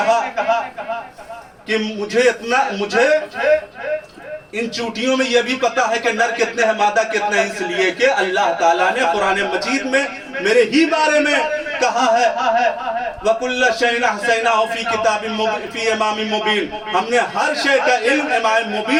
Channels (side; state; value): both; identical; correlation 1.00